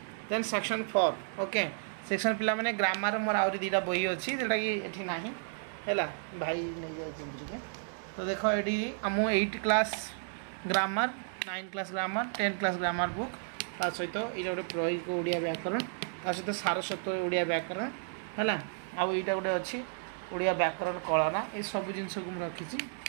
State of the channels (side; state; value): left; silent; digital silence